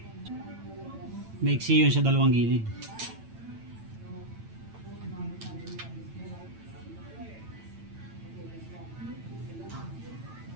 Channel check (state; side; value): late; left; 9.0 ms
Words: Maiksi yun sa dalawang gilid.